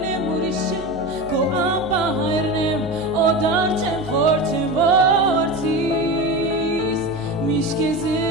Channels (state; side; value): noise; right; hum, 16 dB below the sound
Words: եմ ուրիշ չեմ քո ապա հայրն եմ օդար չեմ խոր չեմ որդիս Միշտ քեզ